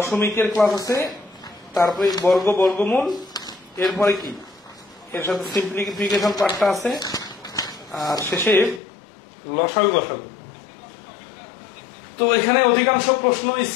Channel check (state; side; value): drops out; right; at 8.8 s